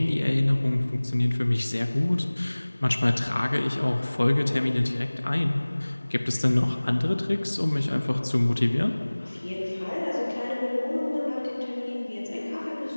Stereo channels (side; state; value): both; inverted; correlation -1.00